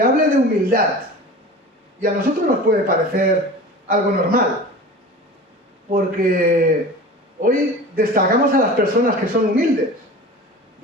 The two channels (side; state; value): both; normal; correlation 0.36